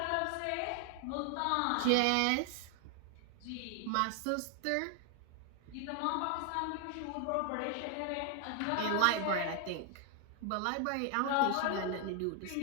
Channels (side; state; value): both; different; correlation 0.00